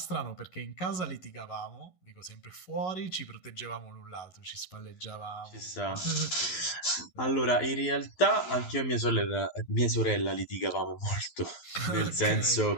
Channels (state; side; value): late; right; 12 ms